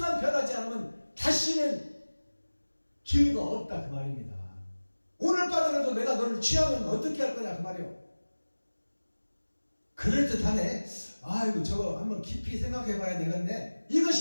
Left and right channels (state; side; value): inverted; both; correlation -1.00